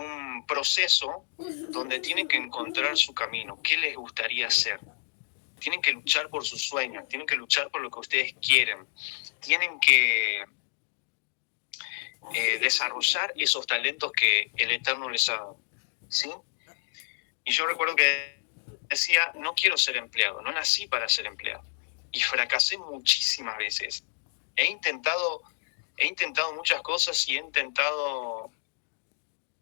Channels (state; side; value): silent; right; 59 dB below the other